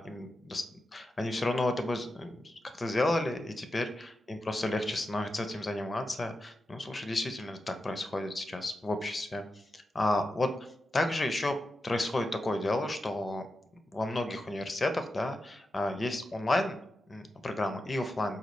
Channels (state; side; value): normal; both; correlation 0.90